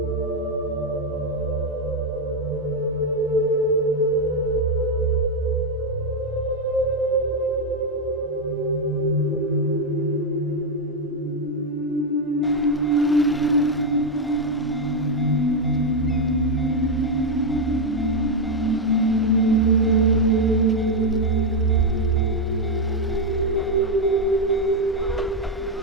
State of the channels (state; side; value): normal; both; correlation 0.04